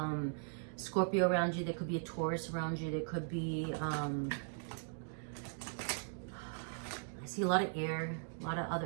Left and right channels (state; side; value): silent; left; digital silence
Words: Scorpio around you. There could be a Taurus around you. There could be, I see a lot of air, a lot of